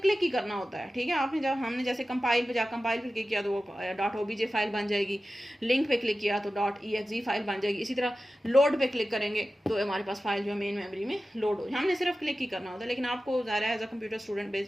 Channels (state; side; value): normal; both; correlation 0.94